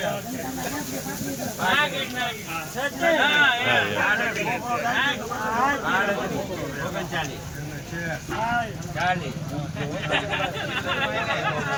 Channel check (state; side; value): identical; both; correlation 1.00